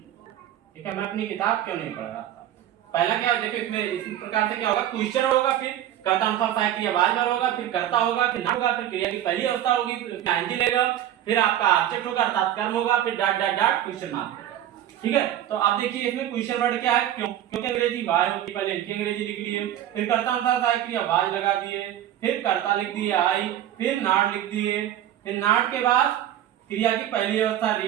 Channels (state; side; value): quieter; left; 11.7 dB